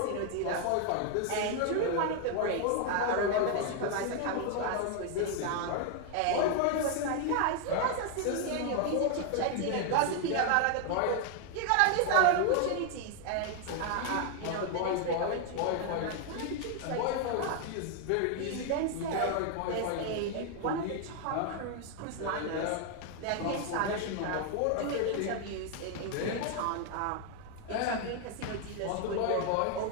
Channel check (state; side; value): different; both; correlation 0.00